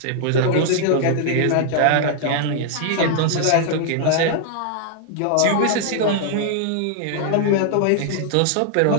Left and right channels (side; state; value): both; different; correlation -0.01